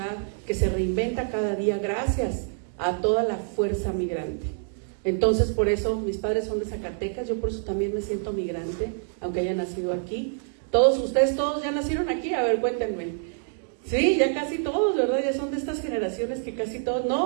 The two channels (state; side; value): silent; left; digital silence